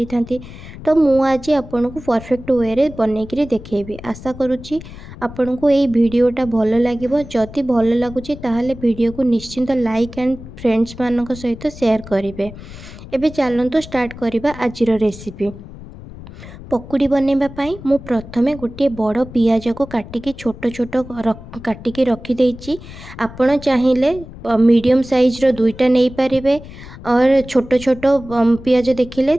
था। तो मु आज आपण को परफेक्ट वे रे बनईकी देखेबी। आशा करुच्ची आपन को ये वीडियोटा भल लगे। जदि भल लगुच ताहले वीडियो को निश्चिंत लाइक एंड फ्रेंड्स मानक सहित शेयर करेंगे। एबे चलतु स्टार्ट करवा आज रेसिपी। पकोड़ी बनवाई मु प्रथमे गोटे बड़ पियाज को काटिकी छोट छोट काटिकी रखी। आपण चाहिए मीडियम साइज रो दुईटा नहीं पारिबे और छोट छोट पियाज देखिले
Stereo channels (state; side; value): noise; left; rumble, 15 dB below the sound